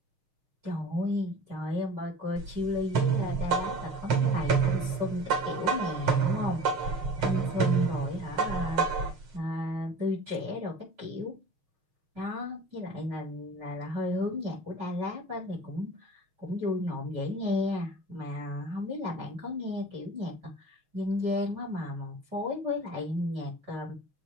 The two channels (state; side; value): late; left; 6.4 ms